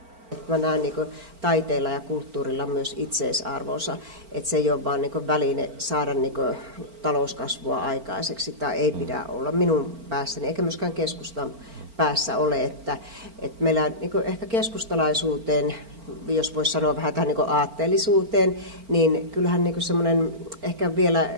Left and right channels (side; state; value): left; late; 4.4 ms